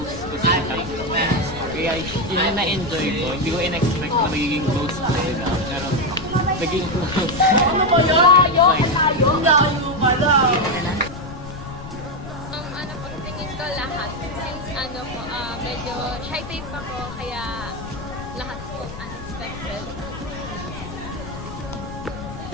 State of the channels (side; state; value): left; noise; rumble, 12 dB below the sound